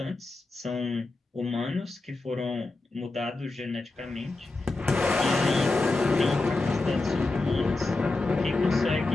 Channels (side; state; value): right; quieter; 3.2 dB